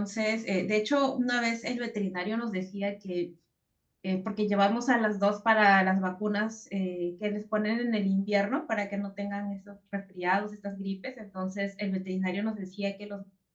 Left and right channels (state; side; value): identical; both; correlation 1.00